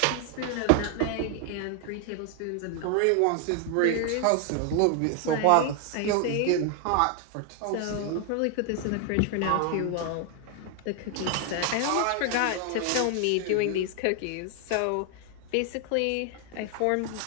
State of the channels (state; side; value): different; both; correlation 0.00